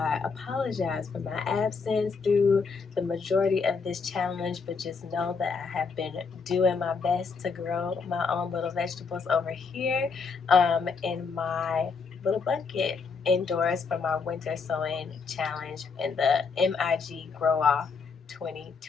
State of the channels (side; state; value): right; quieter; 5.1 dB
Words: apologize for my absence through the majority of this challenge, but just know that I have been doing my best to grow my own little vegetables over here in my little bucket indoors for my winter sowing challenge in the MIG Grow Off